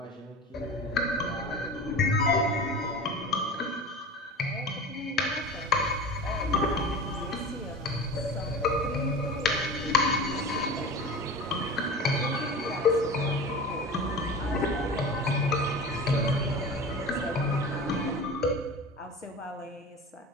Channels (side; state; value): both; normal; correlation 0.33